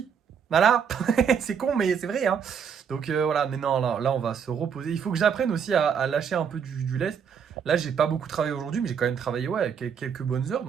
Voilà, c'est con, mais c'est vrai, hein. Donc voilà, mais non, là, on va se reposer. Il faut que j'apprenne aussi à lâcher un peu du lest. Là, j'ai pas beaucoup travaillé aujourd'hui, mais j'ai quand même travaillé ouais, quelques bonnes heures,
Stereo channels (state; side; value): quieter; left; 7.2 dB